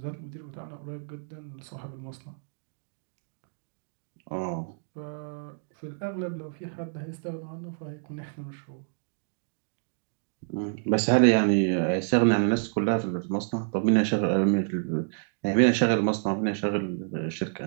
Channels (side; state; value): left; silent; digital silence